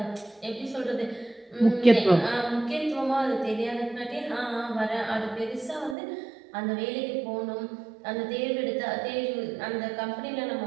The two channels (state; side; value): drops out; left; at 6.0 s